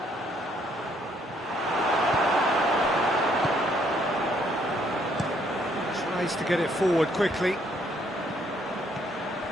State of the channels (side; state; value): both; normal; correlation 0.68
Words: Tries to get it forward quickly.